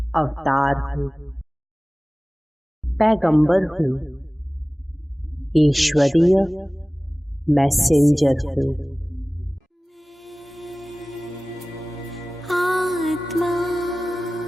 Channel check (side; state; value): both; normal; correlation 0.98